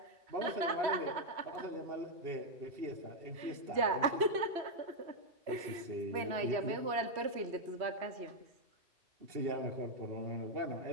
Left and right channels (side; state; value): left; late; 3.0 ms